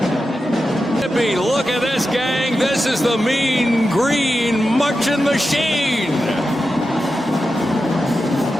Mississippi, look at this, gang. This is the Mean Green Marching Machine.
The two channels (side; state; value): both; normal; correlation 0.90